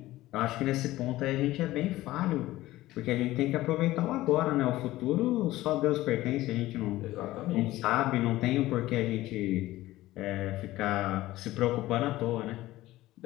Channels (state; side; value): quieter; right; 16.7 dB